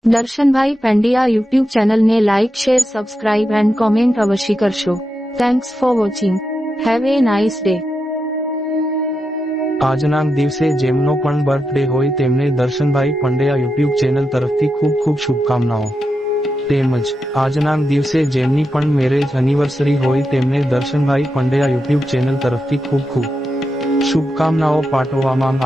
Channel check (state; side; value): normal; both; correlation 0.87